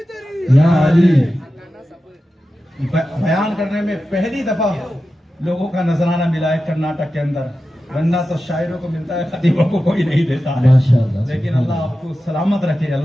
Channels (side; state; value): both; normal; correlation 0.92